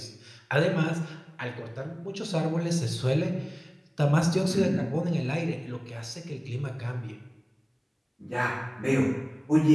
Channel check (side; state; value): both; identical; correlation 1.00